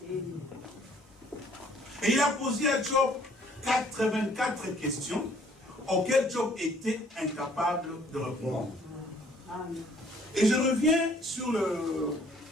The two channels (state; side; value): normal; both; correlation 0.60